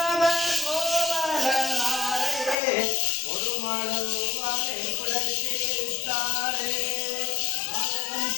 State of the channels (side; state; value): right; drops out; at 2.6 s